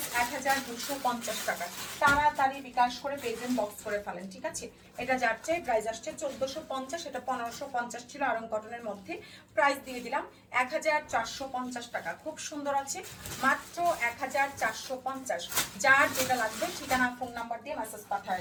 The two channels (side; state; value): both; identical; correlation 1.00